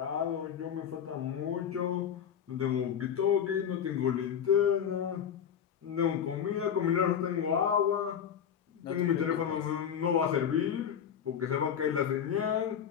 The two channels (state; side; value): quieter; right; 8.4 dB